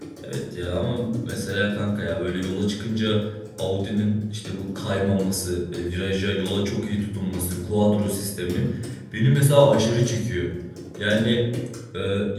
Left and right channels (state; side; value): identical; both; correlation 1.00